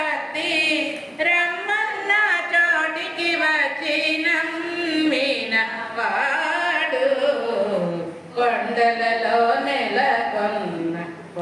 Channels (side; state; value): both; identical; correlation 1.00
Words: రమ్మన్న చోటికి వచ్చిన మీన వాడు కొండలలో నెలకొన్న